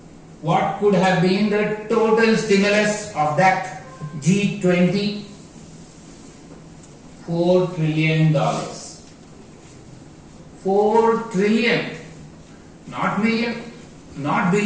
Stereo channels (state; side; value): identical; both; correlation 1.00